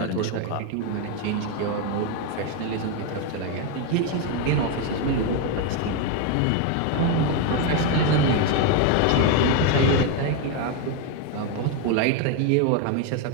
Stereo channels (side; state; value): both; different; correlation 0.02